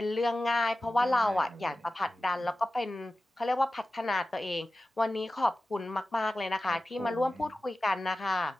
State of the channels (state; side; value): normal; both; correlation 0.95